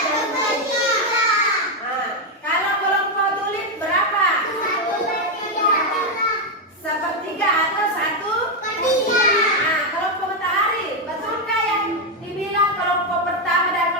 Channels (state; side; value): normal; both; correlation 0.04